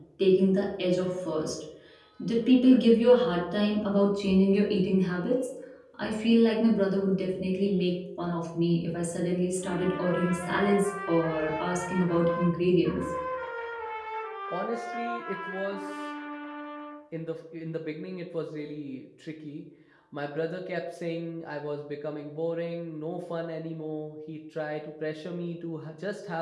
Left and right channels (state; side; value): identical; both; correlation 1.00